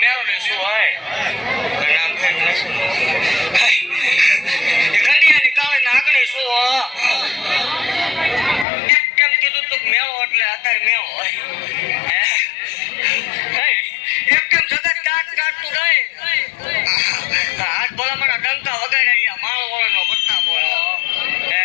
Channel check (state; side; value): drops out; right; at 8.7 s